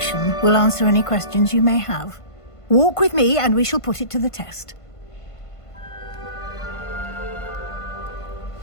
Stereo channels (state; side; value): late; right; 1.5 ms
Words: will answer any questions you may have. Walk with me and we shall put it to the test.